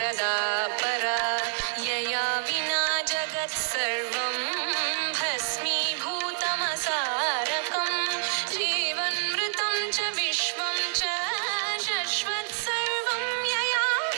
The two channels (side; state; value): left; silent; digital silence